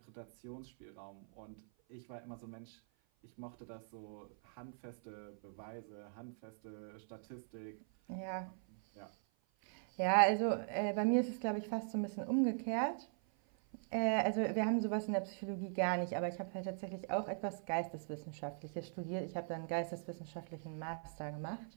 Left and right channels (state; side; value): silent; left; 50 dB below the other